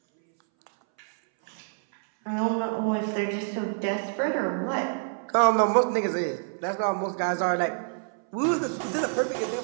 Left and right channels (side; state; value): left; silent; 60 dB below the other